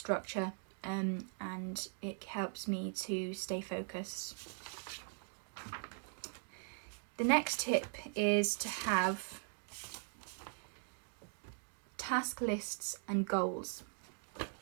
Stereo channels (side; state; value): left; silent; 51 dB below the other